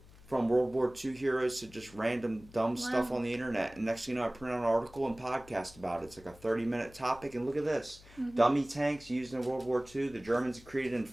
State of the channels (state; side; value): noise; left; hum, 22 dB below the sound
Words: From World War II heroes to just random dumb stuff on the internet. And next thing you know, I print out an article and podcast about it. It's like a 30-minute topic. And look at this. Dummy tanks used in World War II. The Germans created